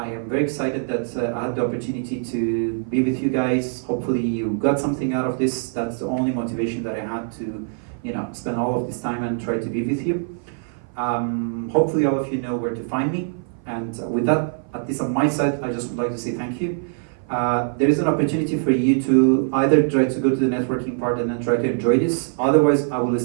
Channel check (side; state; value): left; silent; 56 dB below the other